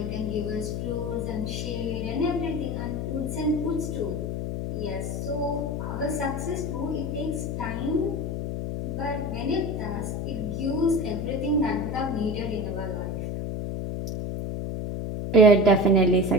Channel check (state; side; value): noise; left; hum, 3 dB below the sound